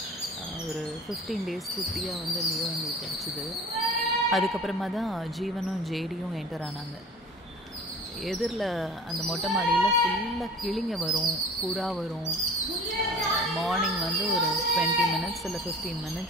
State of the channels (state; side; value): normal; both; correlation 0.42